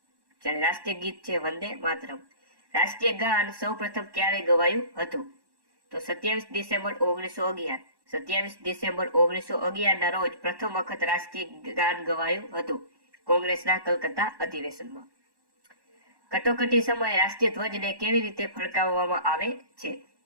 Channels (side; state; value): left; late; 1.1 ms